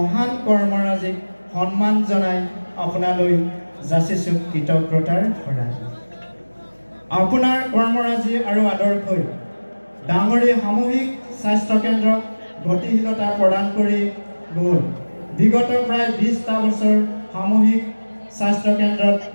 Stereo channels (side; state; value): both; inverted; correlation -1.00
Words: কৰ্মৰাজিক সন্মান জনাই আপোনালৈ যাচিছোঁ কৃতজ্ঞতাৰ শৰাই। আপোনাৰ কৰ্মৰাজি আৰু আদৰ্শই ডাঙৰী সামূহিক স্বাস্থ্য কেন্দ্ৰক গতিশীলতা প্ৰদান কৰি গ'ল। বিগত প্ৰায় 20টা বছৰ সামূহিক স্বাস্থ্য কেন্দ্ৰত